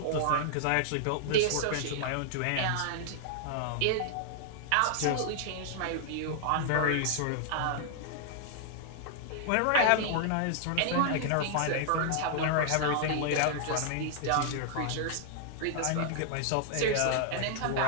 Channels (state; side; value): different; both; correlation -0.01